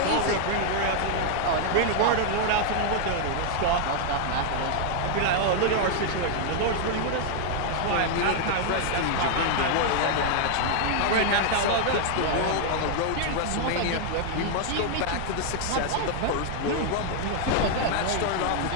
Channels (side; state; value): both; different; correlation 0.00